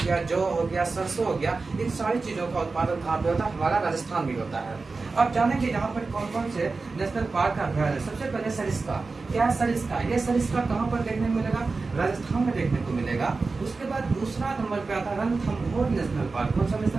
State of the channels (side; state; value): left; quieter; 4.0 dB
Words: गया, जौ हो गया, सरसों हो गया, इन सारी चीजों का उत्पादन कहाँ पे होता है? हमारा राजस्थान में होता है। अब जानेंगे यहाँ पर कौन कौन से नेशनल पार्क का अभ्यारण्य है। सबसे पहले सरिस्का। क्या है सरिस्का? ये सरिस्का कहाँ पर देखने को मिलेगा? राजस्थान में देखने को मिलेगा। उसके बाद दूसरा नंबर पे आता है रणथंभौर नेशनल पार्क। कौन सा